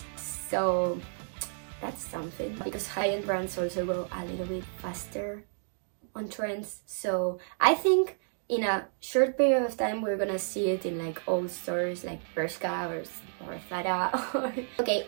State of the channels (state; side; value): silent; left; digital silence